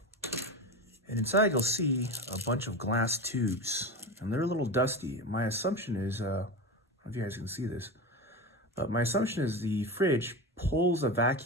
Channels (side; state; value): both; normal; correlation 0.23